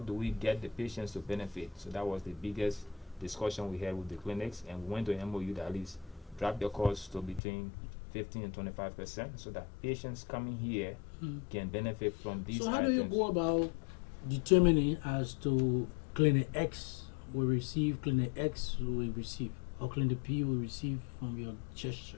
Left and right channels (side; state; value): right; drops out; at 7.4 s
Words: do we get the patients to benefit? So that was the biggest discussion we had with the clinics, and we went to MOU that at least drop their costs to between 15 and 25%, so that patients coming here can benefit from these So how items. do you go about determining as to clinic X will receive, clinic X will receive, or clinic P will receive from your